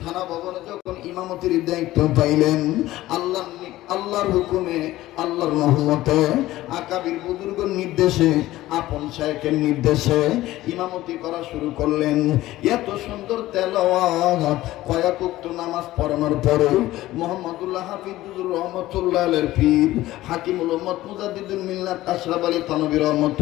থানা ভবনে যখন ইমামতির দায়িত্ব পাইলেন, আল্লাহর হুকুমে, আল্লাহর রহমতে, আকাবির বুজুর্গের নির্দেশে, আপন শায়েখের নির্দেশে ইমামতি করা শুরু করলেন। এত সুন্দর তেলাওয়াত, কয়েক ওয়াক্ত নামাজ পড়ানোর পরে মুহাম্মদুল্লাহ হাফিজুর রহমাতুল্লাহ আলাইহির পীর হাকিমুল উম্মত মুজাদ্দিদুল মিল্লাত আশরাফ আলী থানভী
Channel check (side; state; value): right; quieter; 16.1 dB